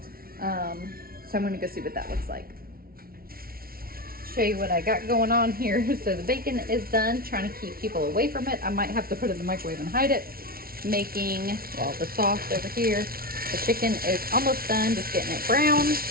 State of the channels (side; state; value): left; late; 0.43 ms